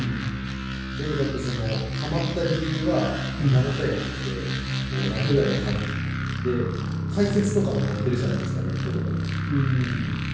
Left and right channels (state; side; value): identical; both; correlation 1.00